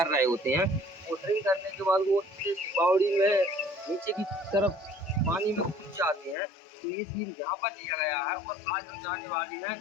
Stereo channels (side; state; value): right; drops out; at 6.4 s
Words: रहे होते हैं। वो ड्रिंक करने के बाद वो इस बावड़ी में नीचे की तरफ पानी में कूद जाते हैं। तो ये सीन यहाँ पर लिया गया है। और आज हम जाने वाले हैं